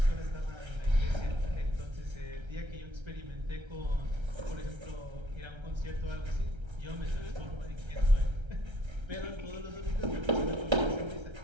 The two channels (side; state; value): left; late; 1.3 ms